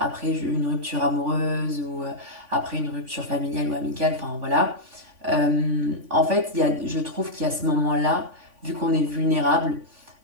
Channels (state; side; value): late; left; 3.5 ms